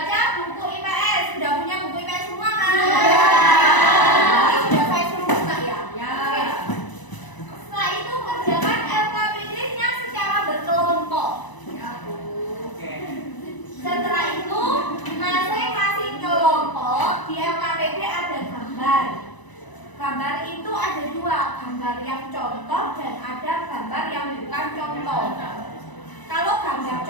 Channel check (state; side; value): late; right; 1.0 ms